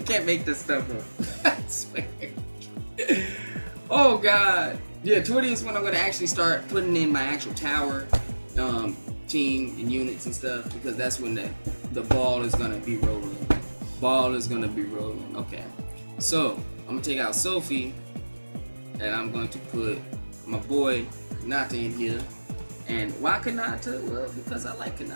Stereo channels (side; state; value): both; inverted; correlation -1.00